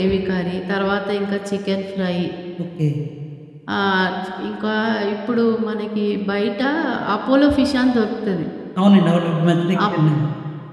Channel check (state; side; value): identical; both; correlation 1.00